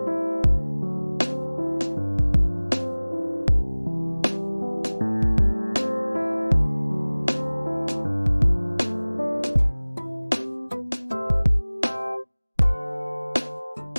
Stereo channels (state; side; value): inverted; both; correlation -1.00